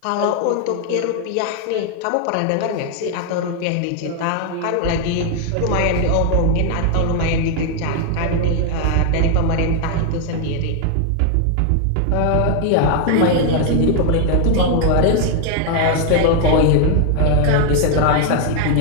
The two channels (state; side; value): different; both; correlation 0.00